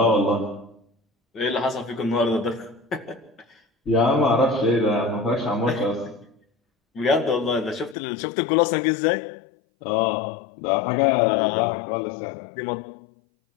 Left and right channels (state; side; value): drops out; right; at 8.0 s